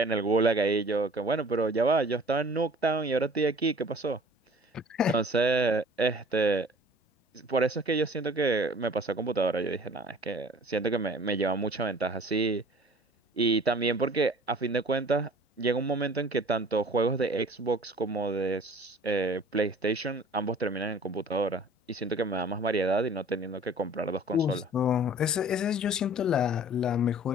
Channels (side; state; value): both; normal; correlation 0.48